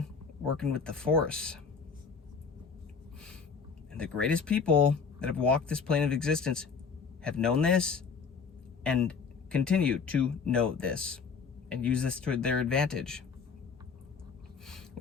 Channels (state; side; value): quieter; right; 5.6 dB